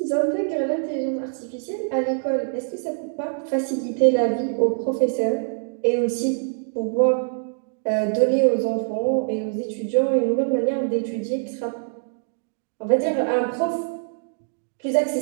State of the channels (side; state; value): left; silent; digital silence